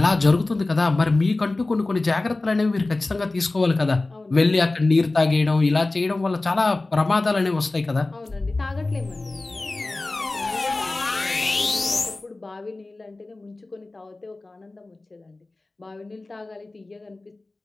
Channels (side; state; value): right; quieter; 3.1 dB